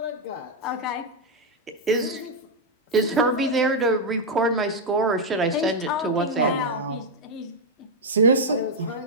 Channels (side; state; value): both; normal; correlation 0.00